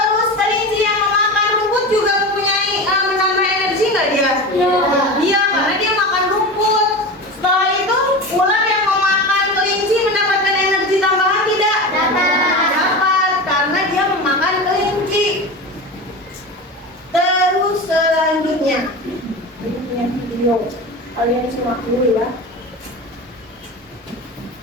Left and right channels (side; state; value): both; normal; correlation 0.27